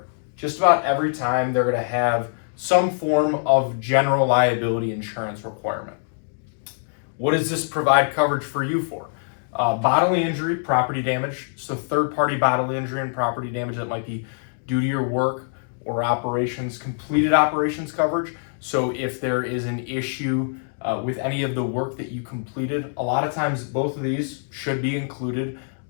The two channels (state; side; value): silent; right; digital silence